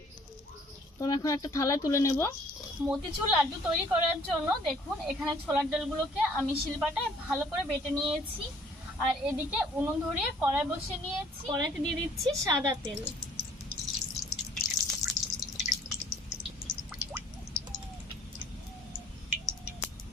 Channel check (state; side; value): normal; both; correlation 0.58